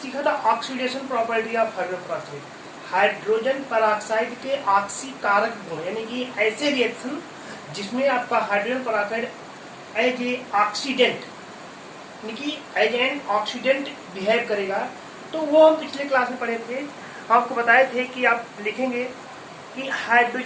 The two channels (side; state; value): both; identical; correlation 1.00